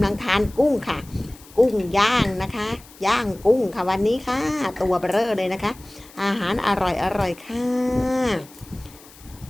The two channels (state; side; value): noise; left; hiss, 23 dB below the sound